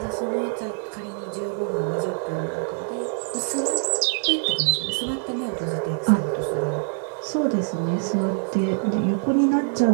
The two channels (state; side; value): silent; left; 61 dB below the other